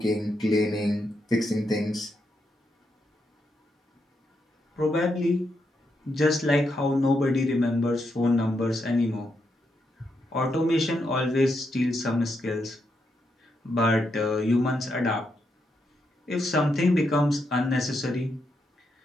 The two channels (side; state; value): both; normal; correlation 0.81